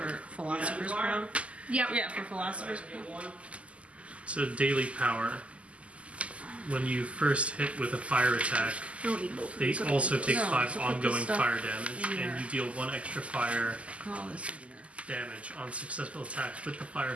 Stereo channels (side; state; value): left; late; 0.061 ms